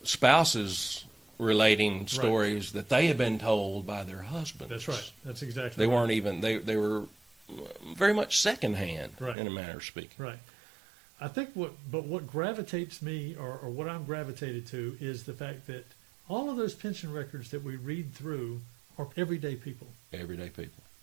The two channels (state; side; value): drops out; left; at 9.3 s